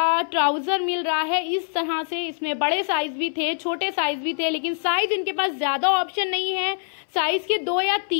ट्राउजर मिल रहा है इस तरह से। इसमें बड़े साइज भी थे, छोटे साइज भी थे, लेकिन साइज इनके पास ज्यादा ऑप्शन नहीं है। साइज के 2 या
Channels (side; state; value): right; silent; 58 dB below the other